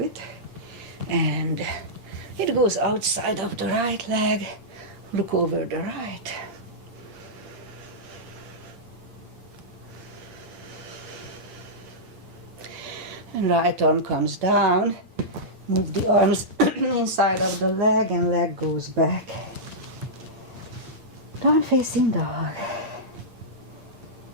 And it goes outside of the right leg. Look over the right. And right arm comes down. Move the arms inside of the leg and leg goes back. Down facing dog.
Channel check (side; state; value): left; late; 8.7 ms